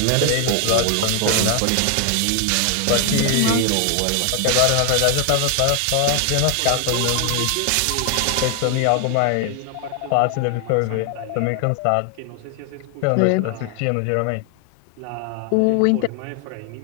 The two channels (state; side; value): different; both; correlation 0.00